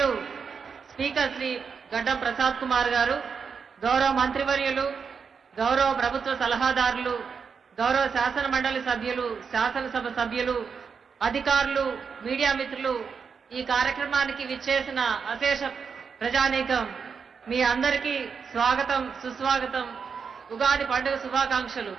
స్పీకర్ శ్రీ గడ్డం ప్రసాద్ కుమార్ గారు, గౌరవ మంత్రివర్యులు, గౌరవ ప్రభుత్వ సలహాదారులు, గౌరవ శాసన మండలి సభ్యులు, శాసనసభ సభ్యులు, అధికారులు, మీడియా మిత్రులు, ఈ కార్యక్రమానికి విచ్చేసిన అశేష ప్రజానీకం మీ అందరికీ స్వాగతం, సుస్వాగతం. ఉగాది పండుగ శుభాకాంక్షలు.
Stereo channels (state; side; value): quieter; left; 6.0 dB